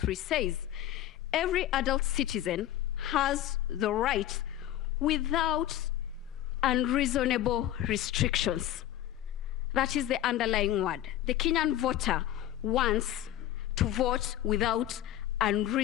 says. Every adult citizen has the right without unreasonable restrictions. That is the underlying word. The Kenyan voter wants to vote without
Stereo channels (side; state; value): right; quieter; 12.8 dB